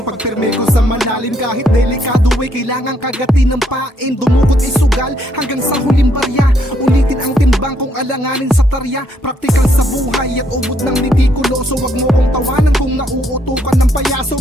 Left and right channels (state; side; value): normal; both; correlation 0.72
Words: pagpirme ko sa malalim, kahit delikado ay kailangan kagatin ng pain. Dumukot isugal hanggang sa huling barya, ulitin ang timbang kung alanganin sa tarya. Praktikal sa buhay at ubod ng nitikuloso, wag mo kong tawanan kung nauutukan ng payaso.